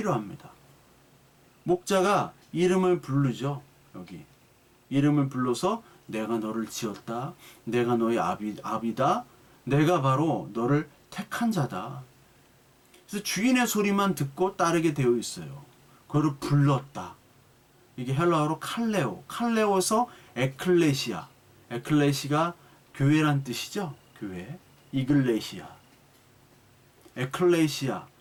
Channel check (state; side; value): identical; both; correlation 1.00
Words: 목자가 이름을 부르죠. 여기 이름을 불러서 내가 너를 지었다. 내가 너의 아비다. 내가 바로 너를 택한 자다. 그래서 주인의 소리만 듣고 따르게 되어 있어요. 그를 불렀다. 이게 헬라어로 칼레오. 칼레오서 에클레시아. 에클레시가 교회란 뜻이죠. 교회. 이글레시아. 에클레시아.